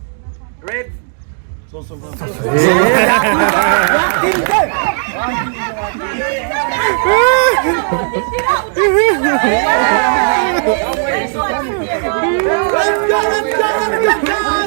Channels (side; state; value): left; silent; digital silence